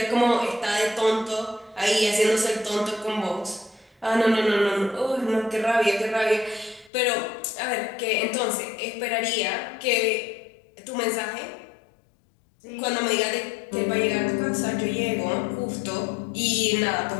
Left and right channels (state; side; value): drops out; right; at 6.9 s